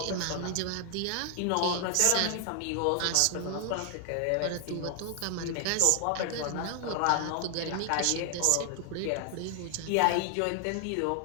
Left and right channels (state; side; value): different; both; correlation 0.00